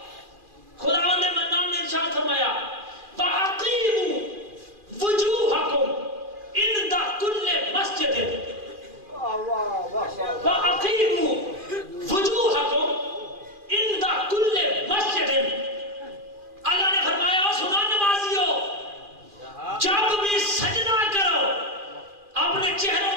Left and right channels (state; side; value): late; left; 2.4 ms